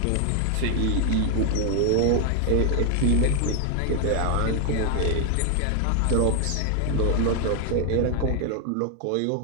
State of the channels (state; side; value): different; both; correlation 0.00